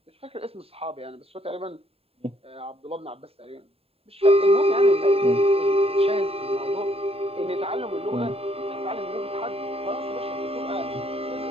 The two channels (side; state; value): left; late; 0.28 ms